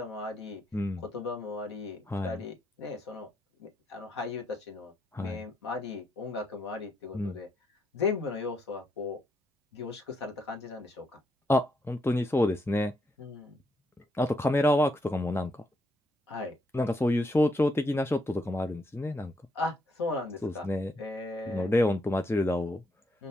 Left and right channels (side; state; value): both; normal; correlation 0.77